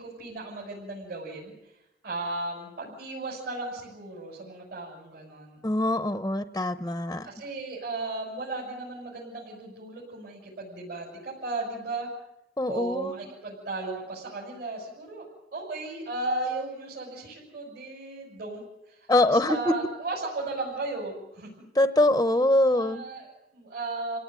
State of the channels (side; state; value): both; normal; correlation 0.47